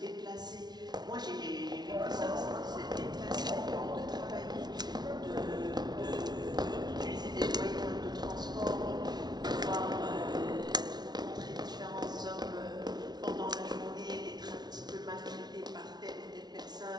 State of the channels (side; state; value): left; late; 0.19 ms